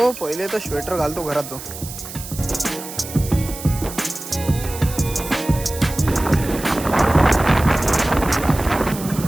पहिले तो स्वेटर घालतो घरात तो.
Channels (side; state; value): right; noise; hiss, 11 dB below the sound